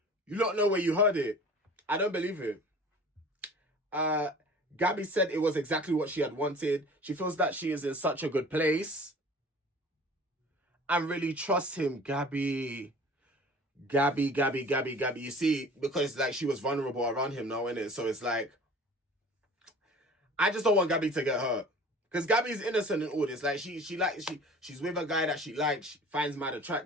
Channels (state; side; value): normal; both; correlation 0.44